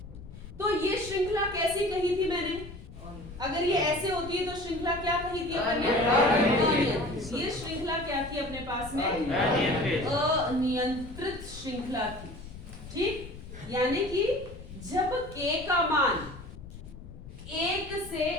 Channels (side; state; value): left; noise; rumble, 15 dB below the sound